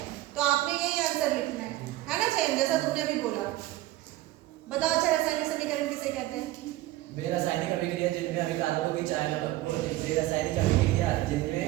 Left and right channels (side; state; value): left; quieter; 16.6 dB